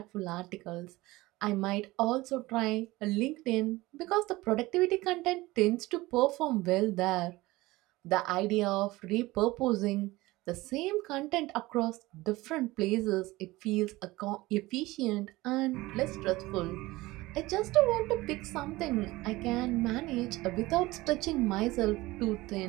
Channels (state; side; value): quieter; left; 19.7 dB